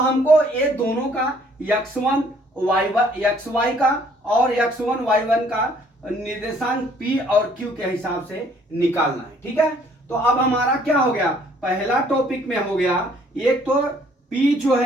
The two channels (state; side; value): normal; both; correlation 0.61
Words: ये दोनों का x1 xy का और x1 y1 का निर्देशांक p और q के हिसाब से निकालना है। ठीक है, तो अब हमारा क्या हो गया, पहला टॉपिक में हो गया, एक तो P जो